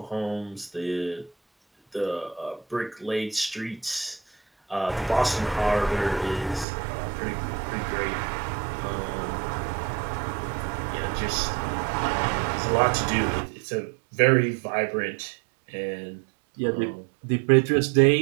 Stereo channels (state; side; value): drops out; left; at 6.7 s